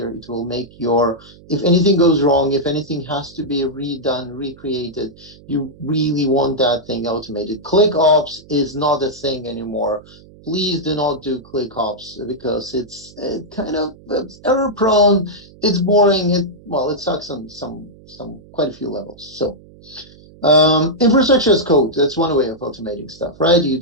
It will make if anything goes wrong, if anything has to be redone, recreated, you really want that thing automated. ClickOps is not a thing anymore. Please do not do ClickOps because it's error prone. It's boring. It sucks on quite a few levels. So. Infrastructure as code, that's one way of automating stuff, right?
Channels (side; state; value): right; noise; hum, 23 dB below the sound